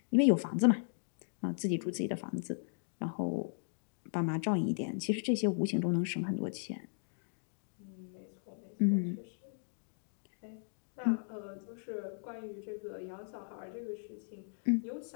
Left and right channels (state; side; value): silent; right; digital silence